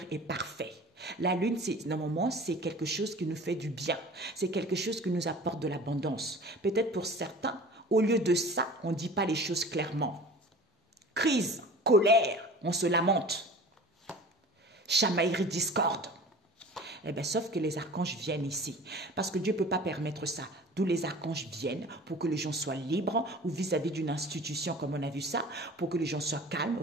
est parfait. La lune, normalement, c'est quelque chose qui nous fait du bien. C'est quelque chose qui nous apporte de l'abondance. Peut-être pour certains, au lieu de ça, on ne dit pas les choses clairement. Crise, colère, on se lamente. Chamaillerie, discorde. Eh bien, sauf que les archanges viennent ici. Parce que Dieu ne peut pas permettre ça. D'où les archanges viennent pour que les gens soient libres ou vis-à-vis d'une institution comme on a vu ça, pour que les gens soient calmes,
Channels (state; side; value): normal; both; correlation 0.41